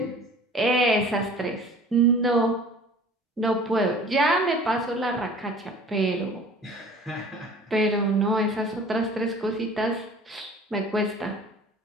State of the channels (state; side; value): normal; both; correlation 0.46